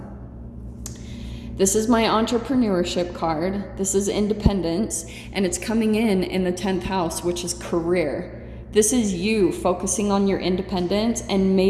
This is my entrepreneurship card. This is independence, and it's coming in the 10th house, which is career. This is you focusing on your independence and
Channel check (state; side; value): identical; both; correlation 1.00